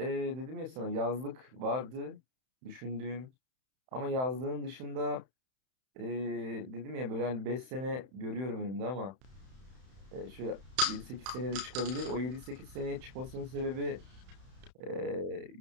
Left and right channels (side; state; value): left; late; 31 ms